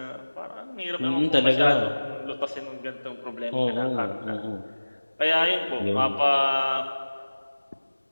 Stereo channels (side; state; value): both; inverted; correlation -1.00